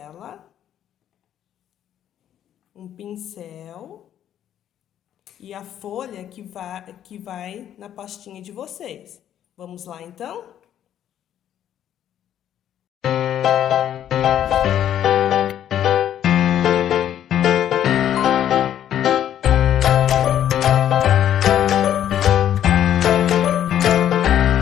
um pincel e a folha que vai na pastinha de vocês. Vamos lá, então?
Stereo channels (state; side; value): quieter; right; 10.7 dB